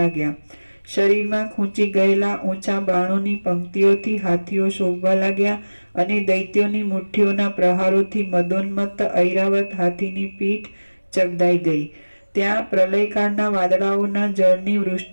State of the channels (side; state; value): both; inverted; correlation -1.00